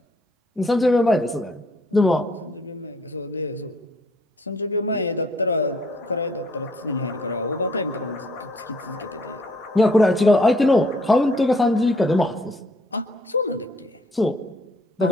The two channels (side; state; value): both; normal; correlation 0.63